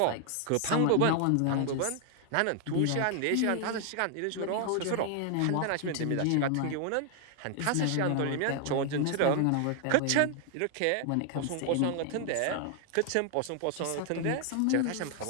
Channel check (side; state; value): both; different; correlation 0.00